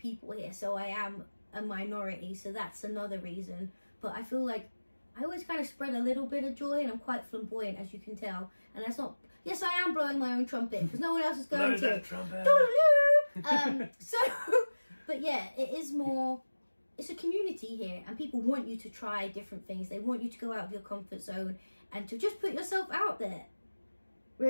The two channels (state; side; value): inverted; both; correlation -1.00